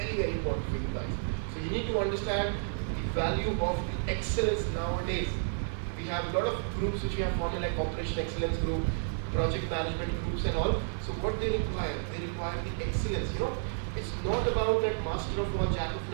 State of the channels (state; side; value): silent; left; 57 dB below the other